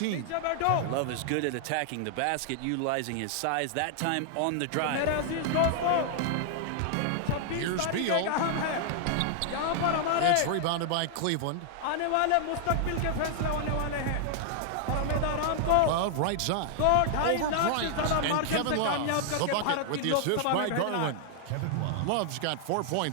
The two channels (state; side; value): different; both; correlation 0.00